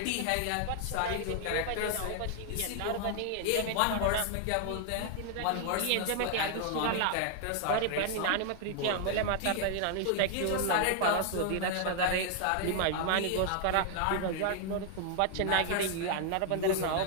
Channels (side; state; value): both; different; correlation 0.00